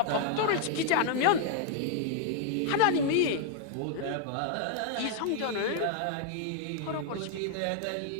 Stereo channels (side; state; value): both; different; correlation 0.00